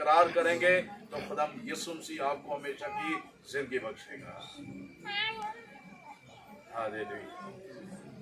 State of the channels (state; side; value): identical; both; correlation 1.00